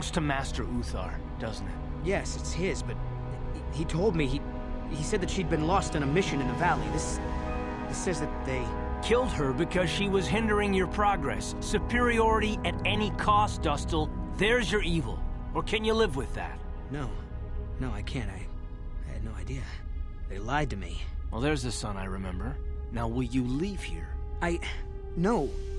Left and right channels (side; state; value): both; identical; correlation 1.00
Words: to Master Uthar, doesn't it? Yes, it's his, but he told me he said that she'd been lost on a mission in the valley. This says that they killed her because she was hindering your progress. Superiority at any cost, Dustil. There's your evil. Or can you live with that? No, I can't. I had no idea. They lied to me. Well, there's the son I remember. Now, will you leave here? No.